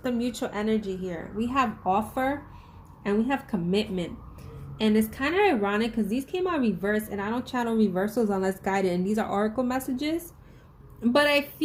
the mutual energy here. We have offer and we have commitment. And it's kind of ironic because these came out reversed, and I don't channel reversals unless guided, and these are oracle messages. But I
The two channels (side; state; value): both; identical; correlation 1.00